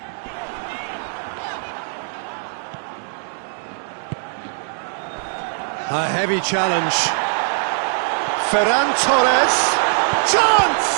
A heavy challenge. Ferran Torres. Chance!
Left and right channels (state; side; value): silent; left; digital silence